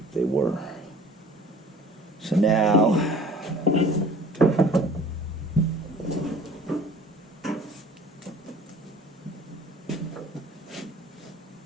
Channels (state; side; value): normal; both; correlation 0.48